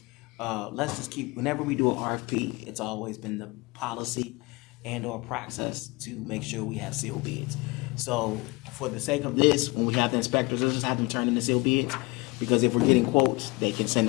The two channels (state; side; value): quieter; right; 24.9 dB